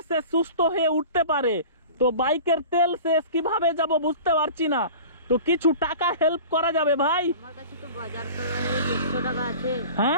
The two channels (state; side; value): inverted; both; correlation -0.39